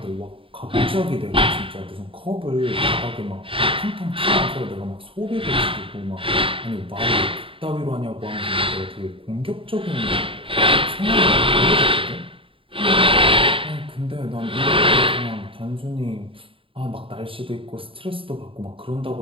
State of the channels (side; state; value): left; late; 0.26 ms